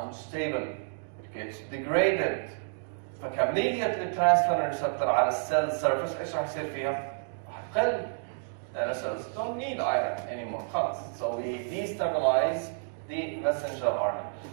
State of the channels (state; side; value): silent; left; digital silence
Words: It gets degraded. فكمية الترانسفيرين ريسبتور على السيل سيرفيس ايش راح يصير فيها؟ راح تقل. لأن cells don't need iron anymore. خلاص. So we destabilize the messenger RNA.